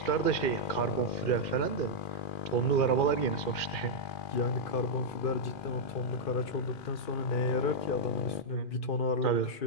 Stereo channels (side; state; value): right; late; 2.4 ms